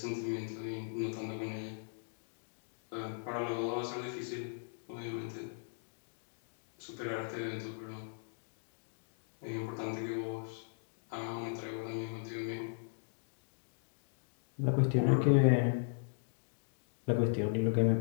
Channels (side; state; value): right; silent; digital silence